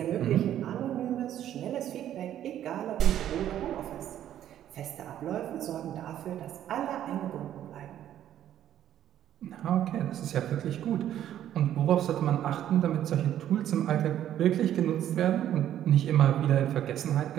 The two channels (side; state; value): left; quieter; 11.3 dB